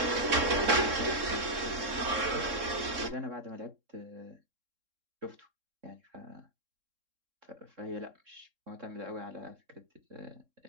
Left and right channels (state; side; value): late; left; 3.7 ms